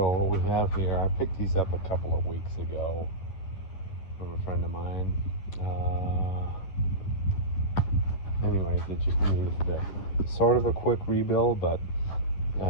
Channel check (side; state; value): right; late; 10 ms